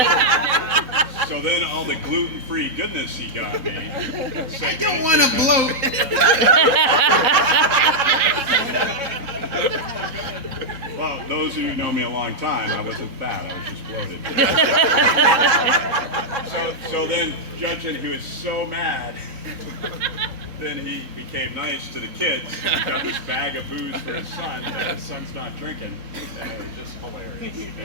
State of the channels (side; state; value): left; late; 4.0 ms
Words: so then all the gluten-free goodness he got me. I don't want to bloat. Well, those of you who know me a long time, I wasn't fat, I was just bloated. so then, judging he was so mad, then he became nice to the kids. He got this bag of booze for his son, but his son's not drinking. And it was just hilarious.